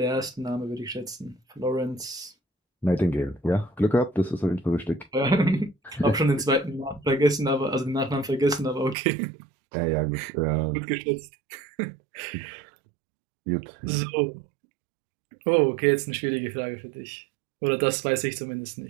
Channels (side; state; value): left; drops out; at 9.0 s